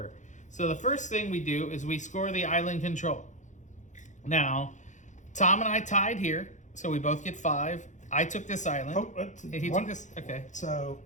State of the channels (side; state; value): right; late; 0.35 ms